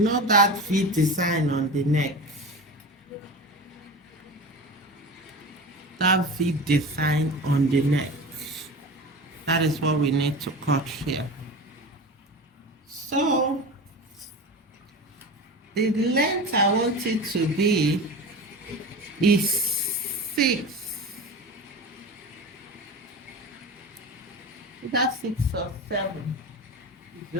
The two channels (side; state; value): both; normal; correlation 0.30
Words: know that V design on the neck? That V design on the neck. That is what we need to cut here. So, the length I want it to be is 6. That's 6 or 7.